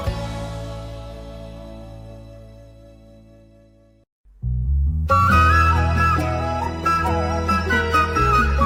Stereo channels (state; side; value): identical; both; correlation 1.00